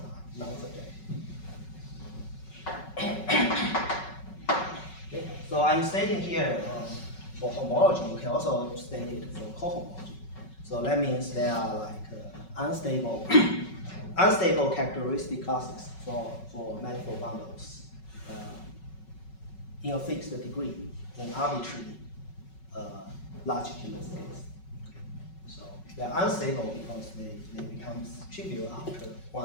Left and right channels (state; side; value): late; right; 5.4 ms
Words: non-subjective. Okay. So I'm stating here for homology, you can also state it for cohomology. So that means there are like unstable characteristic classes for manifold bundles in a fixed degree in arbitrary large-genus space. So they are unstable because they become trivial after